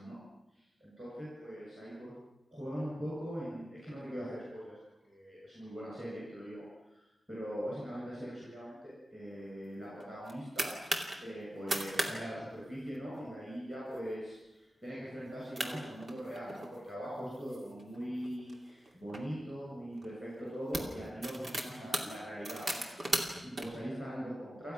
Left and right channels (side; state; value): both; normal; correlation 0.93